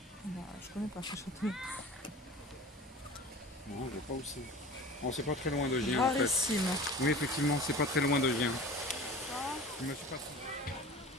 Bah, je connais pas ce château. Non, je vois pas où c'est. Bon, c'est pas très loin de Gien en fait. Rarissime. Oui, effectivement, c'est pas très loin de Gien. Je me suis passé.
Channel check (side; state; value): both; normal; correlation 0.39